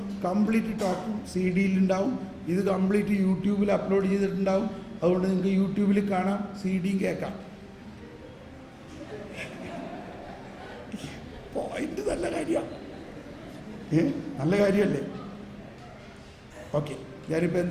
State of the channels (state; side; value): identical; both; correlation 1.00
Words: കംപ്ലീറ്റ് ടോക്കും CD-യിലുണ്ടാവും. ഇത് കംപ്ലീറ്റ് യൂട്യൂബിൽ അപ്ലോഡ് ചെയ്തിട്ടുണ്ടാവും. അതുകൊണ്ട് നിങ്ങൾക്ക് യൂട്യൂബിൽ കാണാം, CD-യും കേൾക്കാം. പോയിന്റ് നല്ല കാര്യമാണ്, നല്ല കാര്യമല്ലേ? ഓക്കെ, ഞാനിപ്പോൾ